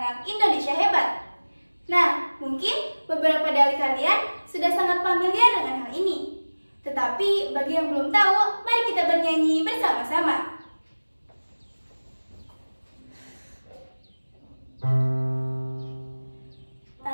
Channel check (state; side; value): inverted; both; correlation -1.00